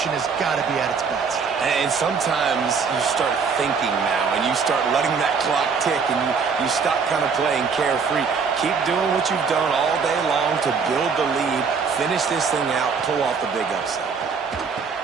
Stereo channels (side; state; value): left; quieter; 5.5 dB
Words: has got to be at its best. And sometimes you start thinking now, and you start letting that clock tick, and you stop kind of playing carefree. Keep doing what you've done all day long to build the lead, finish this thing out, pull off the big upset.